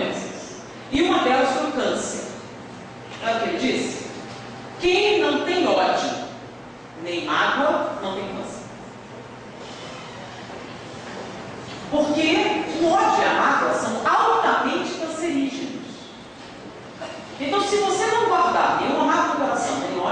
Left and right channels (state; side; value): identical; both; correlation 1.00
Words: E uma delas foi o câncer. Olha o que ele disse? Quem não tem ódio, nem mágoa, não tem câncer. Porque o ódio e a mágoa são altamente cancerígenos. Então, se você não guardar nenhuma mágoa no coração, nem